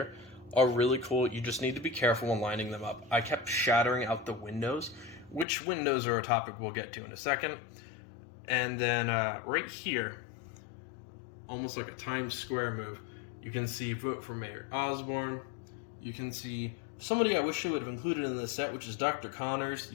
are really cool. You just need to be careful when lining them up. I kept shattering out the windows, which windows are a topic we'll get to in a second. And then right here, almost like a Times Square move, you can see Vote for Mayor Osborn. You can see somebody I wish I would have included in this set, which is Dr. Connors.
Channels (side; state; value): right; drops out; at 5.5 s